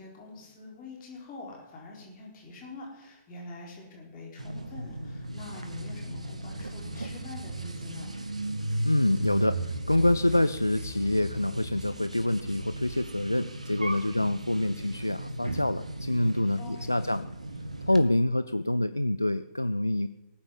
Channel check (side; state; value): both; inverted; correlation -0.96